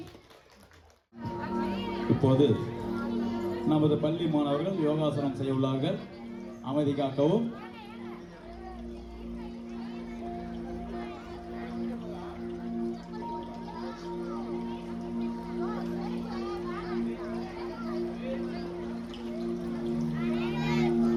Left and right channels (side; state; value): both; identical; correlation 1.00